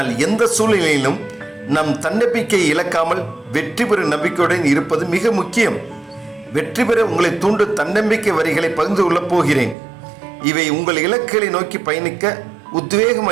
எந்த சூழ்நிலையிலும் நம் தன்னம்பிக்கையை இழக்காமல் வெற்றி பெறும் நம்பிக்கையுடன் இருப்பது மிக முக்கியம். வெற்றி பெற உங்களை தூண்டும் தன்னம்பிக்கை வரிகளை பகிர்ந்து கொள்ளப் போகிறேன். இவை உங்கள் இலக்குகளை நோக்கி பயணிக்க உத்வேகம்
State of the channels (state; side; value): drops out; left; at 9.8 s